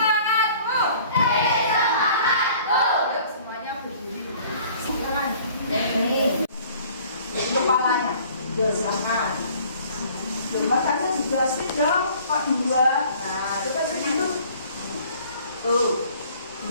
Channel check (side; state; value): both; inverted; correlation -0.53